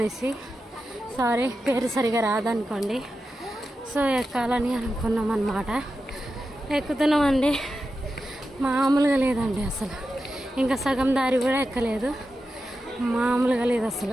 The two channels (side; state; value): both; normal; correlation 0.90